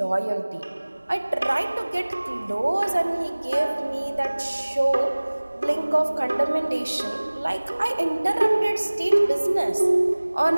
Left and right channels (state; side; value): inverted; both; correlation -1.00